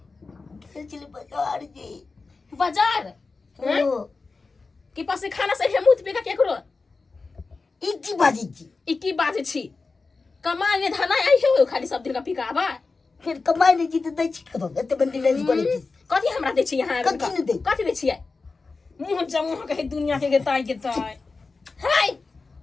चले बाजार जी बाजार हैं कि पास खाना से मुत पे का केकरो इकी बाजी छी कमाई ने धना आई हो खाली सब दिन का पिकाबा फिर कमाई नहीं जीते दै छी कतो एते बंदी नहीं पड़े छी कथी हमरा दे छी यहां कथी दे छी मुंह जमुह कहे दुनिया के ताई हाय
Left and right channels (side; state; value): right; quieter; 4.1 dB